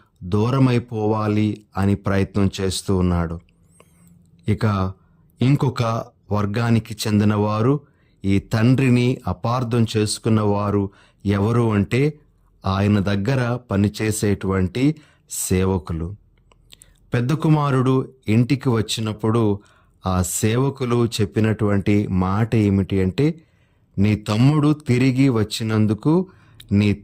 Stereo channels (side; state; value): both; identical; correlation 1.00